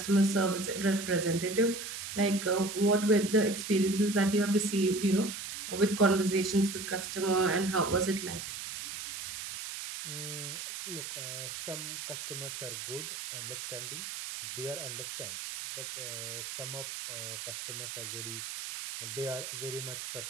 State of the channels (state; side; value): noise; right; hiss, 7 dB below the sound